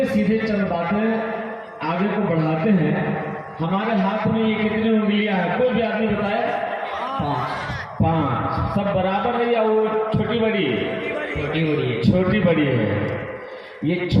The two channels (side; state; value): both; identical; correlation 1.00